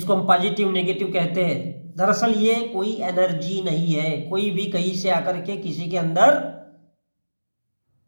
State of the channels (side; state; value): both; inverted; correlation -1.00